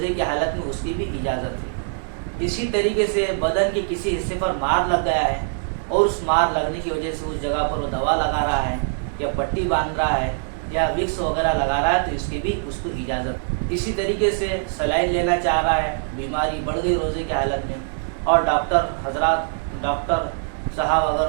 کی حالت میں اس کی بھی اجازت ہے۔ اسی طریقے سے بدن کے کسی حصے پر مار لگ گیا ہے اور اس مار لگنے کی وجہ سے اس جگہ پر وہ دوا لگا رہا ہے یا پٹی باندھ رہا ہے یا وکس وغیرہ لگا رہا ہے تو اس کی بھی اس کو اجازت ہے۔ اسی طریقے سے سلائن لینا چاہ رہا ہے، بیماری بڑھ گئی روزے کی حالت میں اور ڈاکٹر صاحب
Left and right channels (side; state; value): left; silent; 63 dB below the other